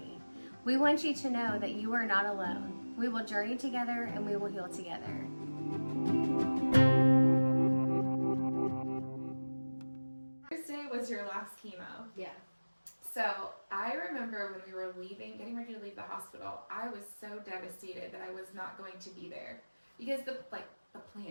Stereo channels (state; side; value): inverted; both; correlation -1.00